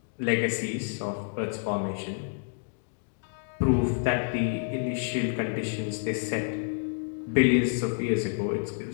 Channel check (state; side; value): silent; right; digital silence